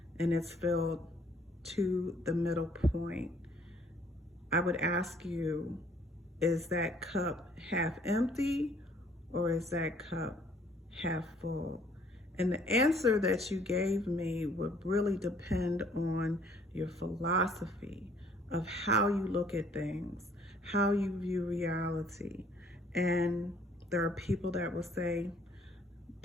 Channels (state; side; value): normal; both; correlation 0.60